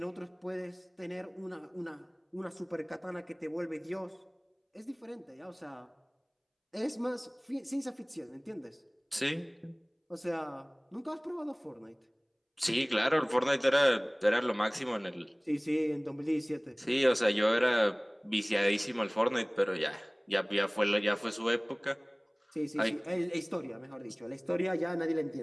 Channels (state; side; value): identical; both; correlation 1.00